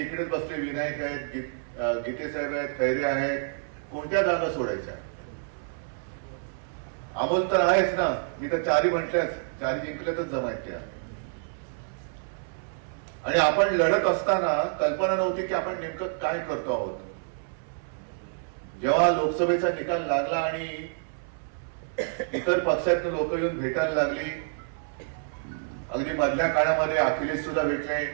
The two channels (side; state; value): left; silent; 59 dB below the other